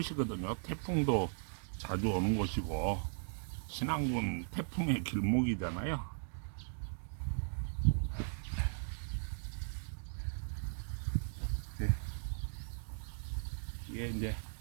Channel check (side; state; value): left; silent; digital silence